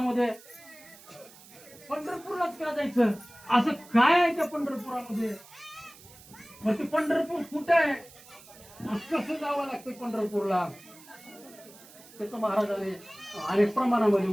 पंढरपूरलाच का जायचं? असं काय आहे त्या पंढरपुरामध्ये? मग ते पंढरपूर कुठं आहे? कसं जावं लागतं पंढरपूरला? त्याचं महाराजांनी अनेक प्रमाणामध्ये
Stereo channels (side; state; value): right; noise; hiss, 21 dB below the sound